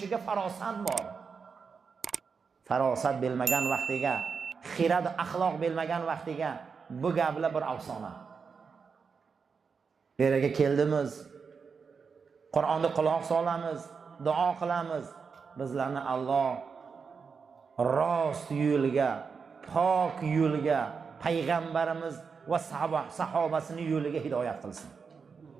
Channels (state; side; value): quieter; left; 5.6 dB